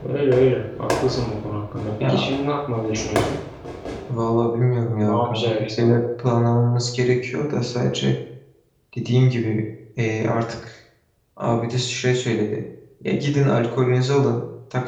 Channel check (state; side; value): identical; both; correlation 1.00